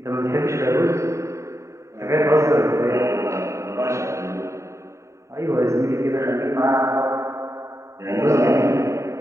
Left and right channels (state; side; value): late; left; 0.14 ms